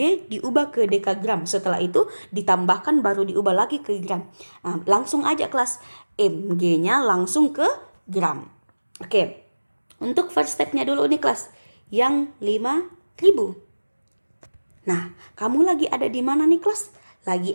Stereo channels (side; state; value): both; inverted; correlation -1.00